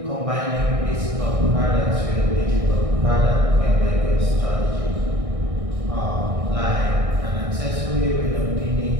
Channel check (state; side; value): late; left; 1.6 ms